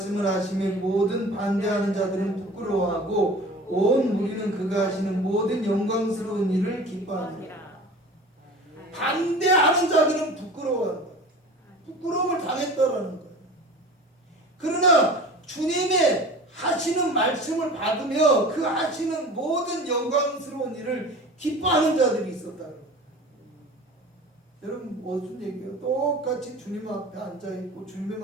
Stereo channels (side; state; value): both; normal; correlation 0.39